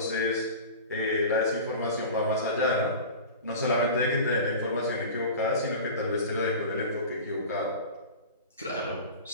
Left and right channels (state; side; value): inverted; both; correlation -0.34